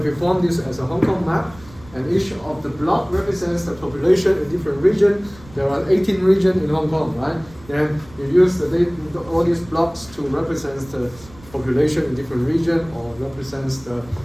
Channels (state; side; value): noise; right; rumble, 22 dB below the sound